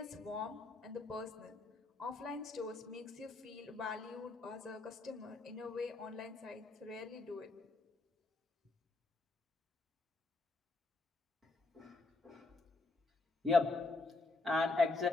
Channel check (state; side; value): quieter; right; 3.4 dB